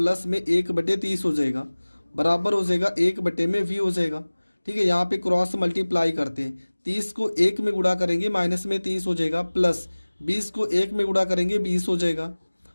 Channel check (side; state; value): both; inverted; correlation -1.00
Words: में 1/30 हो जाएगा, बराबर हो जाएगा 1/v हो जाएगा। ठीक है, यहाँ पे क्रॉस मल्टीप्लाई करते हैं, 30 को 1 में गुणा करेंगे माइनस में 30 हो जाएगा, प्लस 20 को 1 में गुणा करेंगे 20 हो जाएगा,